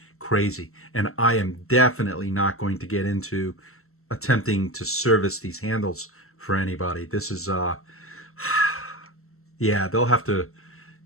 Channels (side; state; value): right; late; 0.63 ms